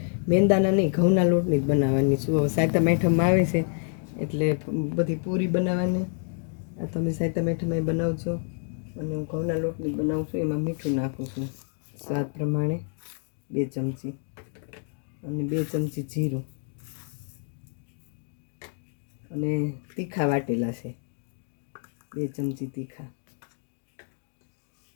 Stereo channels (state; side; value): silent; right; 56 dB below the other